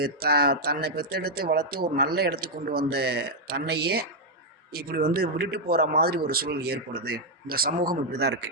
தன்னை பெற்றெடுத்து வளர்த்து ஒரு நல்ல இடத்துக்கு கொண்டு வந்த தன்னையே இப்படி விட்டுட்டு போகிற மாதிரி ஒரு சூழல் ஏற்படுது. இந்த சமூகம் இப்படி தான்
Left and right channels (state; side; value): normal; both; correlation -0.02